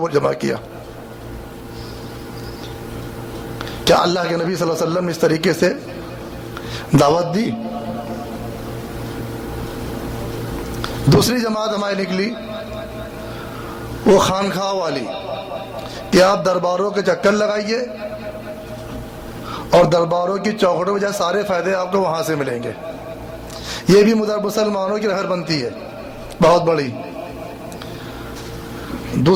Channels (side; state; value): both; identical; correlation 1.00